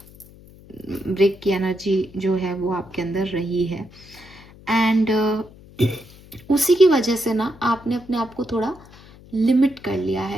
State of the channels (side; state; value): left; noise; hum, 22 dB below the sound